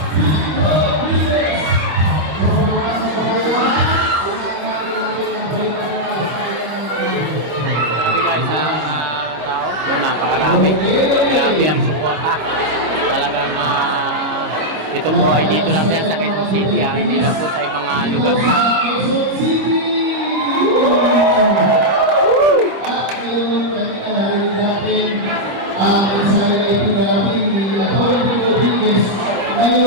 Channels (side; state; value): left; late; 25 ms